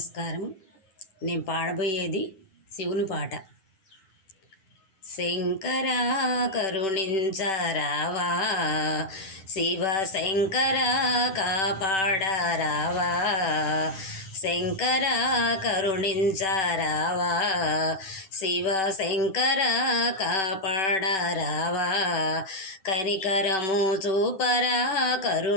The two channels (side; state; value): right; late; 10 ms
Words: నేను పాడబోయేది శివుని పాట. శంకరా కరుణించరావా, శివ శంకర కాపాడరావా, శంకర కరుణించరావా, శివ శంకర కాపాడరావా, కనికరము చూపరా